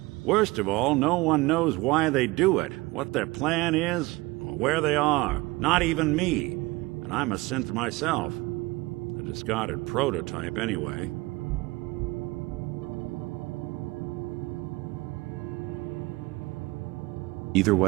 Worst of all, no one knows why they do it, what their plan is, or where they are. Not even me. And I'm a synth myself. A discarded prototype, anyway. Either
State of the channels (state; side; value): quieter; left; 22.0 dB